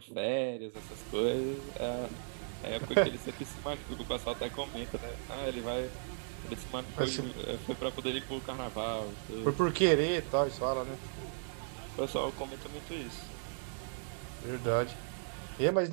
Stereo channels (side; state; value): left; silent; digital silence